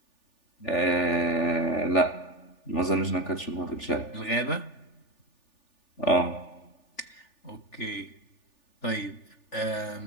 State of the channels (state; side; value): late; right; 3.4 ms